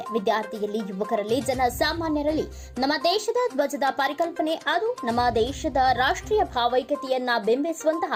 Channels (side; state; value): both; identical; correlation 1.00